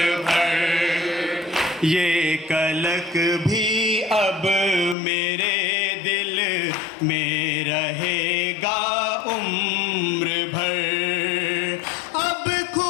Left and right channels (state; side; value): drops out; right; at 5.0 s